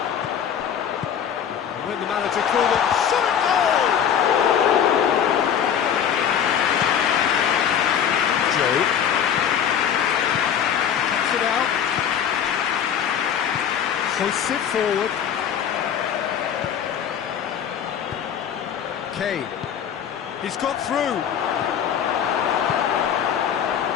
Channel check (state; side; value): quieter; right; 8.6 dB